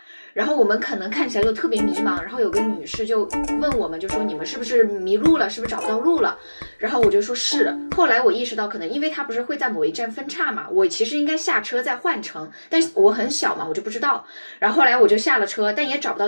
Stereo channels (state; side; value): inverted; both; correlation -1.00